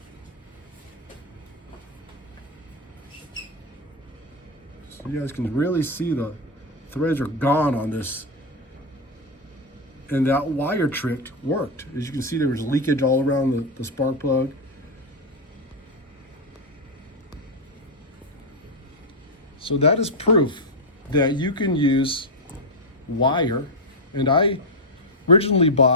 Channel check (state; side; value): normal; both; correlation 0.04